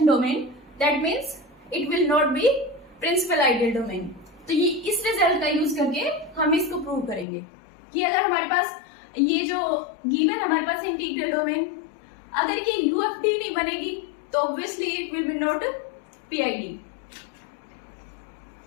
domain, that means it will not be principal ideal domain. तो ये इस रिजल्ट का यूज करके हम इसको प्रूव करेंगे कि अगर हमारे पास ये जो गिवन हमारे पास इंटीग्रल डोमेन, अगर ये यूएफडी नहीं बनेगी तो obviously it will B not PID.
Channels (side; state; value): right; drops out; at 7.2 s